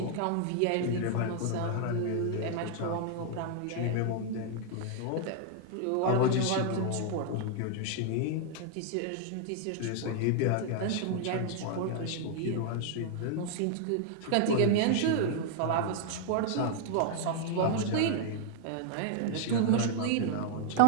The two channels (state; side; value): different; both; correlation 0.00